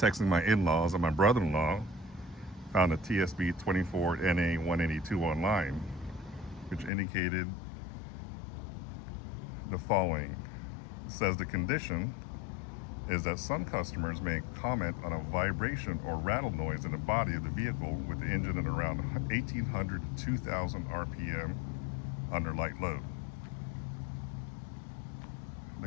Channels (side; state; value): right; drops out; at 6.9 s